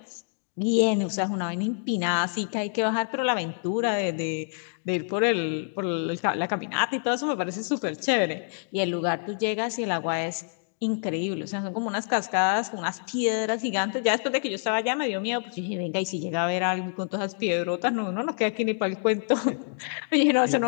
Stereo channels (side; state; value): right; silent; digital silence